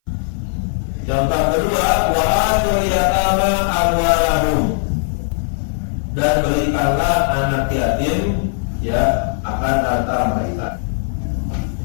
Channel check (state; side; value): silent; right; 60 dB below the other